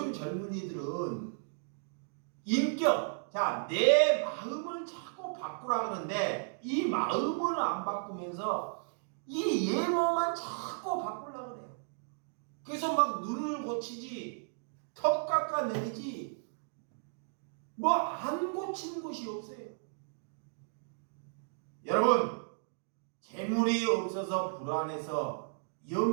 젊은이들은 인격, 자, 내 마음을 자꾸 바꾸라 그러는데 이 마음을 안 바꾸면서 이 외모만 자꾸 바꾸려고 그래요. 그래서 막 눈을 고치지, 턱 깎아내리지, 뭐 안 고치는 것이 없어요. 여러분, 재물이 없어서 불안해서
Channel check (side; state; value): left; silent; digital silence